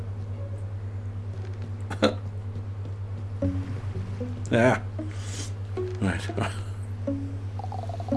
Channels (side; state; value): both; identical; correlation 1.00